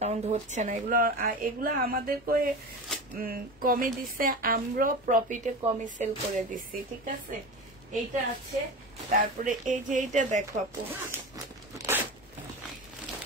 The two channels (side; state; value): both; normal; correlation 0.28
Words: হচ্ছে না, এগুলো আমাদেরকে কমে দিচ্ছে, আমরা প্রফিটে কমে সেল করে দিচ্ছি। ঠিক আছে, এইটা আছে। তারপরে এই যে এইটা দেখো আপু,